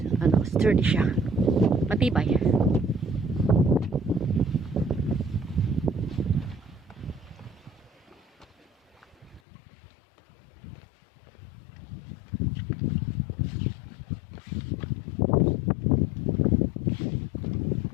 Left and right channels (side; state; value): right; drops out; at 9.4 s